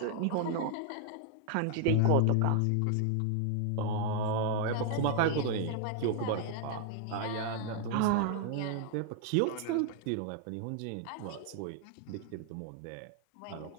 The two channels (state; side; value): different; both; correlation 0.00